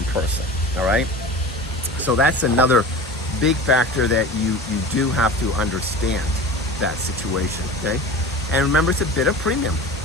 person, all right? So that's another big factor that you do have to understand that situation, okay? And remember, it's a bit of premium.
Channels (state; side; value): normal; both; correlation 0.35